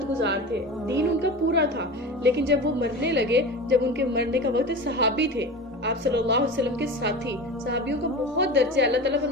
گزار تھے، دین ان کا پورا تھا، لیکن جب وہ مرنے لگے، جب ان کے مرنے کا وقت، صحابی تھے، آپ صلی اللہ علیہ وسلم کے ساتھی، صحابیوں کا بہت درجہ، اللہ تعالیٰ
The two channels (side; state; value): both; normal; correlation 0.30